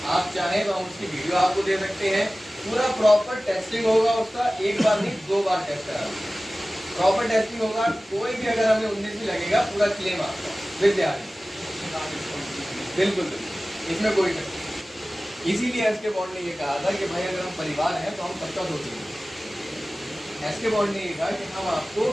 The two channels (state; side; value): normal; both; correlation 0.97